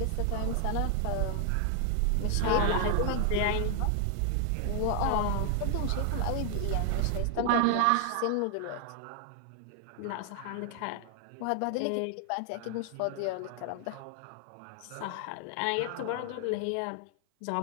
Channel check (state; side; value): different; both; correlation 0.00